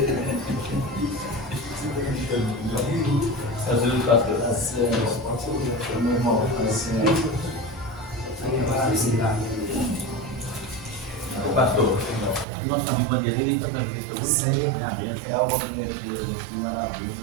Pastor, nosso amigo Bandeireiro está na vida. Sim, é algo que maravilha.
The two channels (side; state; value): left; drops out; at 12.5 s